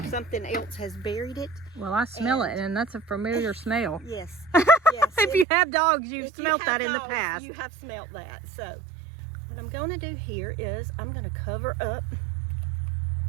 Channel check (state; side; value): drops out; left; at 5.5 s